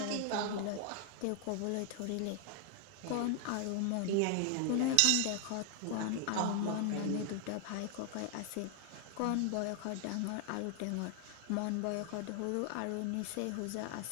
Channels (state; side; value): different; both; correlation 0.00